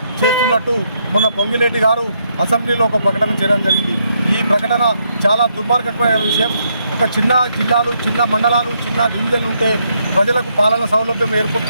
చేస్తున్నట్టు మొన్న పొంగిలేటి గారు అసెంబ్లీలో ఒక ప్రకటన చేయడం జరిగింది. ఈ ప్రకటన చాలా దుర్మార్గమైన విషయం. ఒక చిన్న జిల్లాలు, చిన్న మండలాలు, చిన్న డివిజన్లు ఉంటే ప్రజలకు పాలన సౌలభ్యం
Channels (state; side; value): inverted; both; correlation -0.76